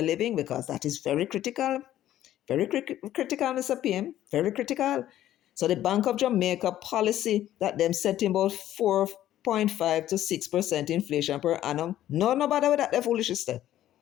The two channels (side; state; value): right; quieter; 12.8 dB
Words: living, because that is very critical. Very critical, Mr. PM. Very critical. So the Bank of Jamaica policy that them setting about 4.5 to 6% inflation per annum. No bother with that, they're foolish sister.